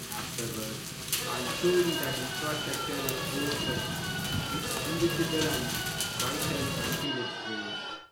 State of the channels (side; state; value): both; identical; correlation 1.00